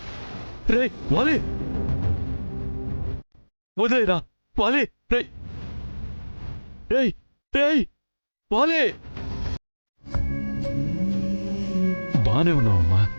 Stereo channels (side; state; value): both; inverted; correlation -1.00